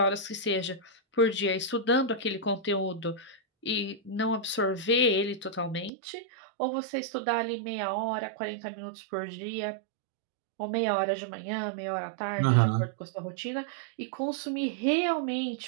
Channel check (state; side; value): drops out; left; at 5.9 s